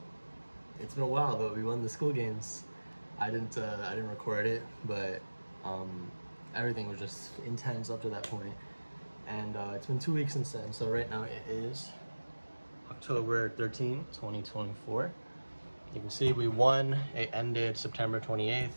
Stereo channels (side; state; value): both; inverted; correlation -1.00